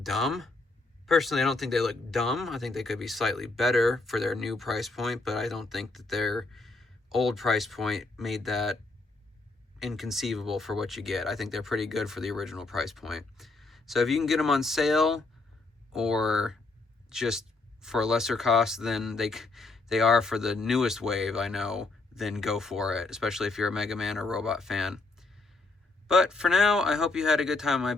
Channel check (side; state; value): right; quieter; 3.4 dB